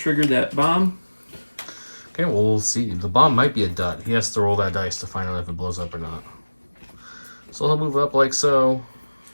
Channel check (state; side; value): inverted; both; correlation -1.00